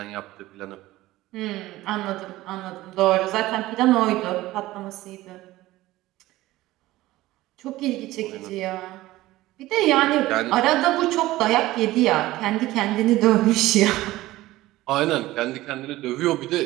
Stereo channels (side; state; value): left; quieter; 17.1 dB